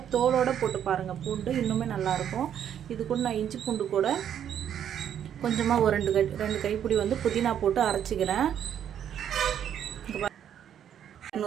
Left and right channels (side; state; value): left; quieter; 9.5 dB